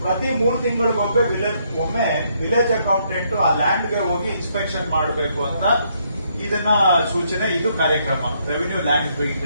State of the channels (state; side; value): inverted; both; correlation -0.72